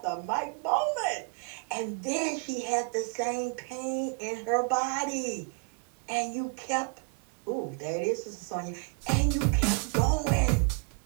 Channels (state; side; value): quieter; left; 35.5 dB